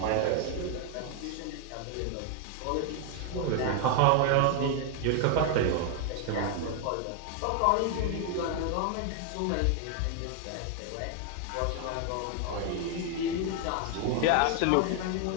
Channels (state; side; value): different; both; correlation 0.00